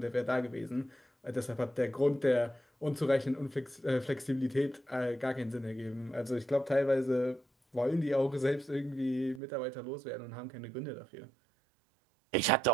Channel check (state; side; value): drops out; left; at 9.4 s